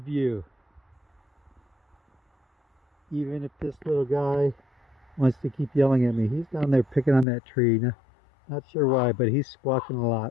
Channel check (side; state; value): right; drops out; at 7.2 s